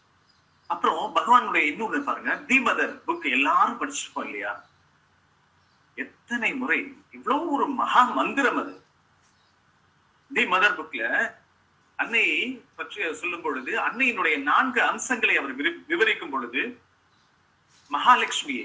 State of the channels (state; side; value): identical; both; correlation 1.00